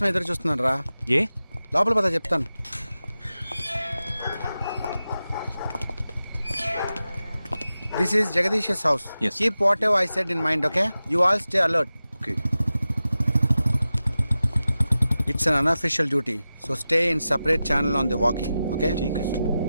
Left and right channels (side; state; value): both; inverted; correlation -0.93